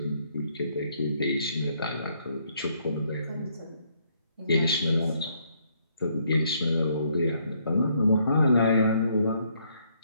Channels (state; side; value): inverted; both; correlation -0.70